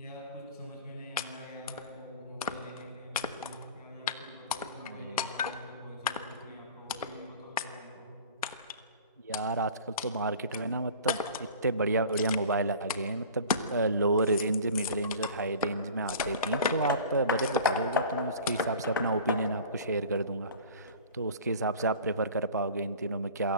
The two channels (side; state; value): both; inverted; correlation -0.42